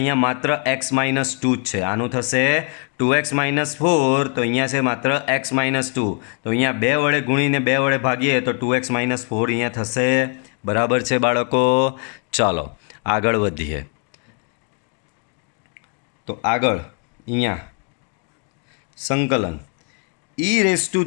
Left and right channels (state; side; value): quieter; right; 38.5 dB